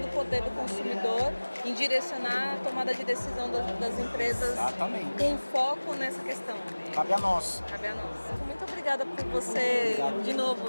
do poder do consumidor em direcionar a tomada de decisão das empresas. Exatamente. Com foco nessa questão. Cabe a nós. Cabe a nós. Muito obrigada por você, Obrigado. de novo,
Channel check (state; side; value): inverted; both; correlation -1.00